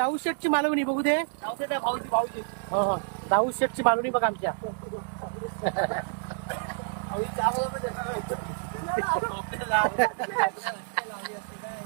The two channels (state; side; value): silent; left; digital silence